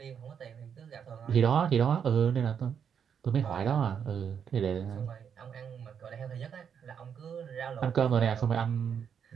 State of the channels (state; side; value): quieter; left; 7.6 dB